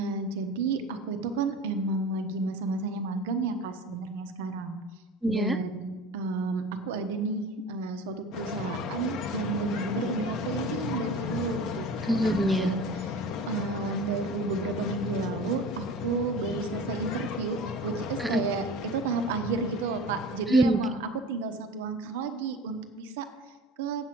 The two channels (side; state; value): both; normal; correlation 0.36